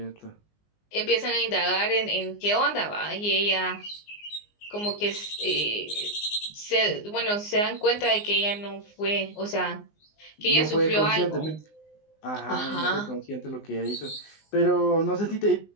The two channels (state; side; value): late; right; 19 ms